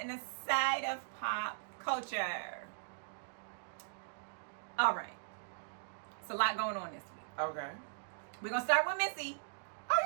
a side of pop culture. All right, it's a lot going on this week. Okay. We're gonna start with Missy.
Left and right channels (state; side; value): silent; left; digital silence